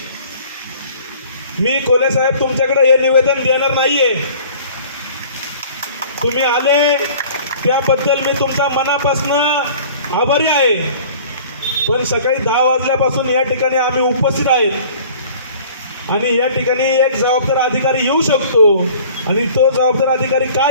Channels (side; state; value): both; inverted; correlation -0.48